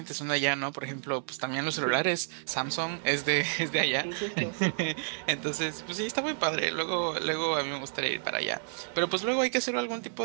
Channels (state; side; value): silent; left; digital silence